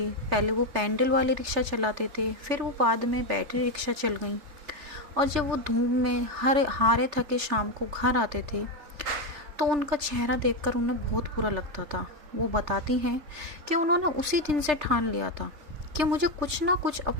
पहले वो पैंडल वाली रिक्शा चलाते थे, फिर वो बाद में बैटरी रिक्शा चल गई और जब वो धूप में हारे थके शाम को घर आते थे तो उनका चेहरा देखकर उन्हें बहुत बुरा लगता था। वो बताती हैं कि उन्होंने उसी दिन से ठान लिया था कि मुझे कुछ ना कुछ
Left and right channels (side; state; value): left; late; 3.4 ms